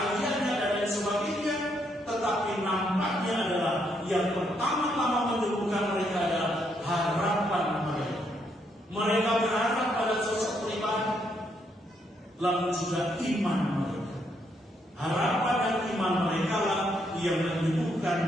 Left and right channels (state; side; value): normal; both; correlation 0.75